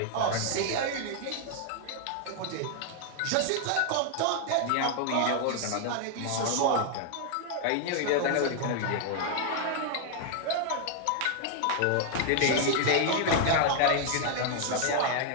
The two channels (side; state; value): both; different; correlation 0.00